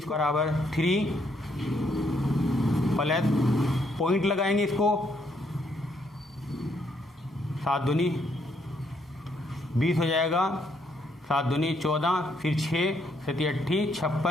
बराबर 3 प्लस पॉइंट लगाएंगे इसको, 7 दूनी 20 हो जाएगा, 7 दूनी 14, फिर 6 7 8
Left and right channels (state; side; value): normal; both; correlation 0.72